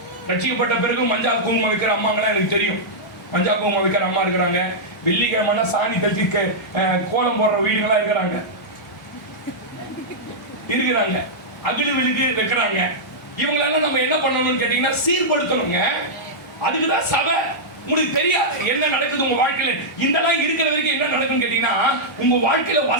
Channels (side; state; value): both; normal; correlation -0.09